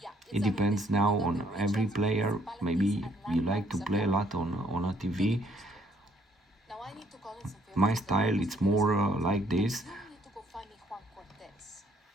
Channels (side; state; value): both; normal; correlation 0.65